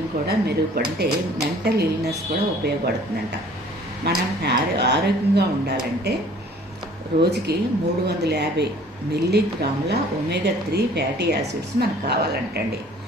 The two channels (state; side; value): normal; both; correlation 0.53